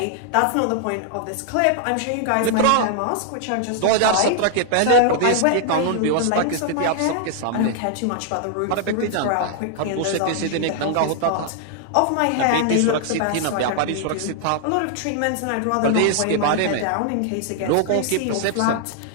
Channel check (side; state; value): both; different; correlation 0.00